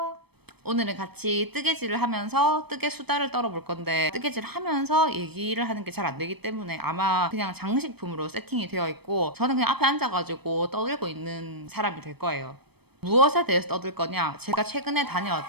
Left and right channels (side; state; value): left; late; 0.97 ms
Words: 오늘은 같이 뜨개질을 하면서 뜨개 수다를 떨어볼 건데, 뜨개질 하면서 얘기를 하는 게 잘 안 되기 때문에 아마 그냥 장식품으로 세팅이 되어 있고, 저는 그냥 앞에 앉아가지고 떠들고 있는 사람이 될 거예요. 무엇에 대해서 떠들 거냐? 제가 최근에